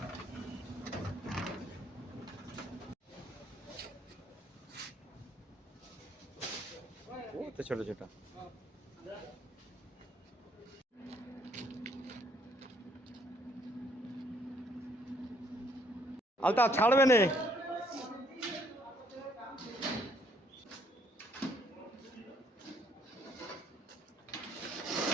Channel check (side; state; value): both; normal; correlation 0.66